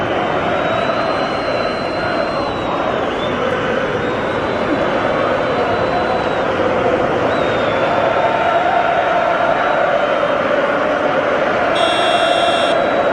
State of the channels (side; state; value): both; identical; correlation 1.00